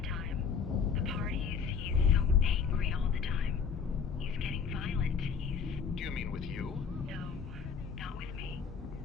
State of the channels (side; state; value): right; quieter; 6.1 dB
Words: time. The parties, he's so angry all the time. He's getting violent. Do you mean with you? No, not with me.